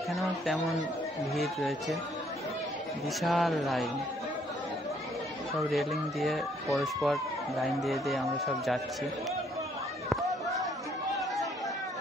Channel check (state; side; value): normal; both; correlation 0.66